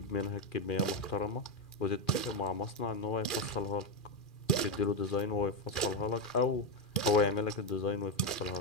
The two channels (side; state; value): right; late; 2.4 ms